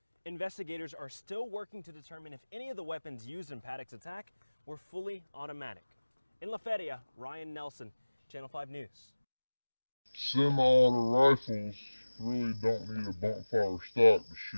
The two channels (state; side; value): inverted; both; correlation -1.00